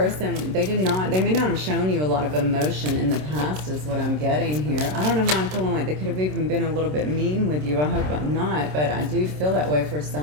they may not have shown you a lot of emotion in the past, is what I'm getting here. I don't know why I'm feeling like they could have even been a little bit mean with you. I hope I'm not, but I do feel that way for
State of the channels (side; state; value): left; late; 27 ms